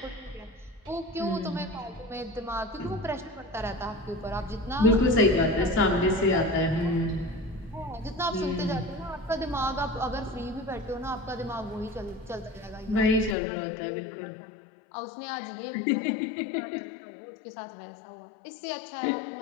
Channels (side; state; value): right; drops out; at 13.4 s